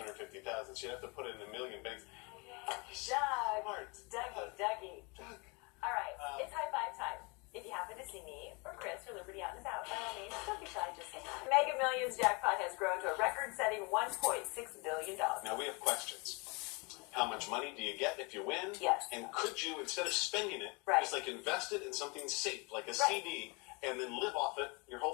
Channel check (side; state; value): right; quieter; 29.8 dB